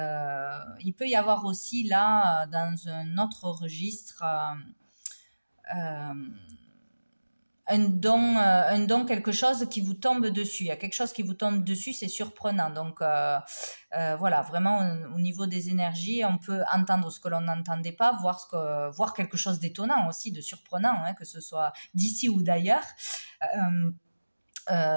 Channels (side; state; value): both; inverted; correlation -1.00